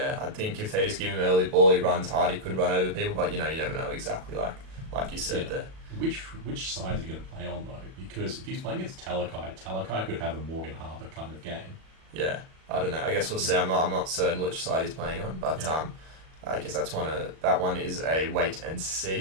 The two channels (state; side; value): late; left; 37 ms